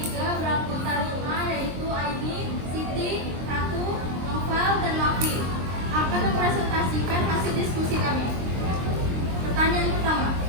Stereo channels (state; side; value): late; left; 23 ms